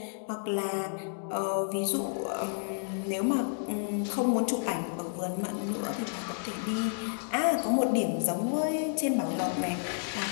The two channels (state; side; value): silent; right; digital silence